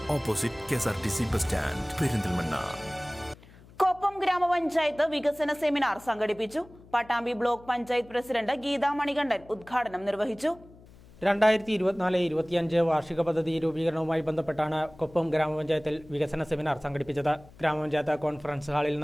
opposite KSRTC bus stand, Perinthalmanna. Koppam ഗ്രാമപഞ്ചായത്ത് വികസന സെമിനാർ സംഘടിപ്പിച്ചു. പട്ടാമ്പി ബ്ലോക്ക് പഞ്ചായത്ത് പ്രസിഡന്റ് ഗീതാ മണികണ്ഠൻ ഉദ്ഘാടനം നിർവഹിച്ചു. 2024-25 വാർഷിക പദ്ധതി രൂപീകരണവുമായി ബന്ധപ്പെട്ടാണ് കൊപ്പം ഗ്രാമപഞ്ചായത്തിൽ വികസന സെമിനാർ സംഘടിപ്പിച്ചത്. ഗ്രാമപഞ്ചായത്ത് കോൺഫറൻസ് ഹാളിൽ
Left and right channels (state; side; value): noise; left; hum, 23 dB below the sound